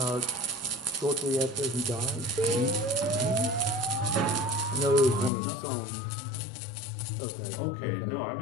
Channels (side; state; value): right; drops out; at 5.3 s